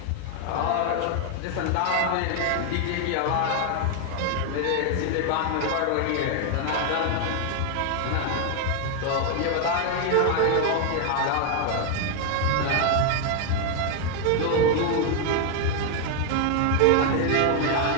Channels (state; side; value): different; both; correlation 0.01